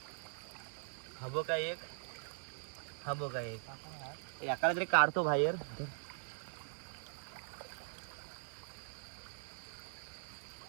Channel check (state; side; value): silent; left; digital silence